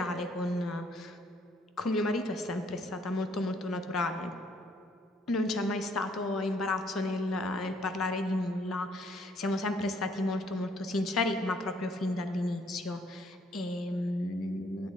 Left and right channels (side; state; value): both; normal; correlation 0.66